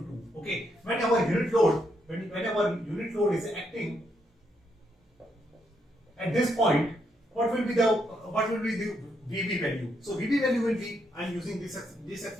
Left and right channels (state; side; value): normal; both; correlation 0.77